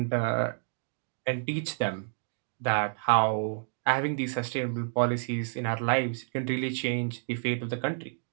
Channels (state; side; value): silent; left; 58 dB below the other